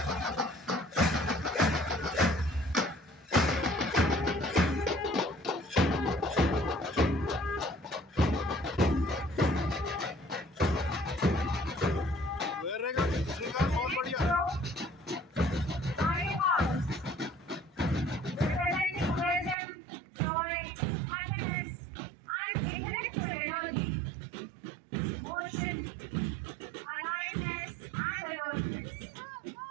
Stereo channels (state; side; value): drops out; left; at 19.6 s